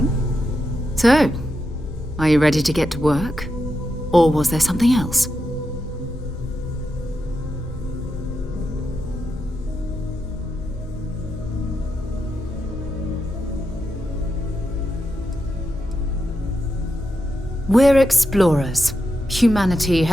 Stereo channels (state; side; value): normal; both; correlation 0.86